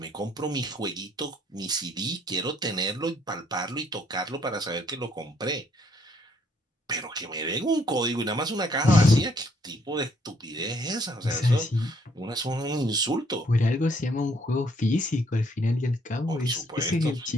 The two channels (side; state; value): both; normal; correlation 0.67